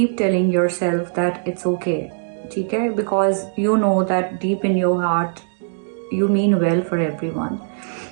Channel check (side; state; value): left; silent; digital silence